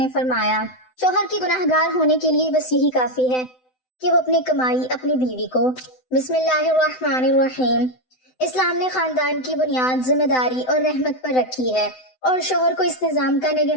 فرمایا، شوہر کے گناہ گار ہونے کے لیے بس یہی کافی ہے کہ وہ اپنی کمائی اپنی بیوی کو۔ بسم اللہ الرحمن الرحیم۔ اسلام نے خاندان کی بنیاد ذمہ داری اور رحمت پر رکھی ہے اور شوہر کو اس نظام کا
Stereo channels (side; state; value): right; late; 7.9 ms